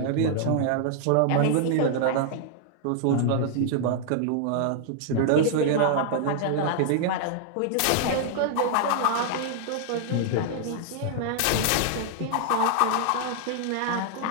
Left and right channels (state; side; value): different; both; correlation 0.00